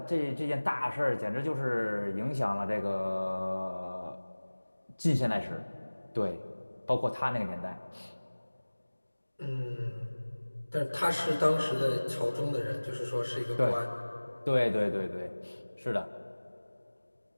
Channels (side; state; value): both; inverted; correlation -1.00